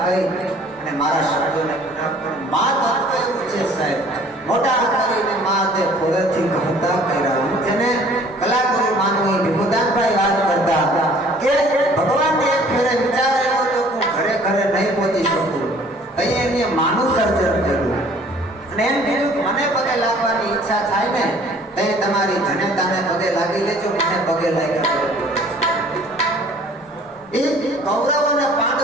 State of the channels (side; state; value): both; normal; correlation 0.54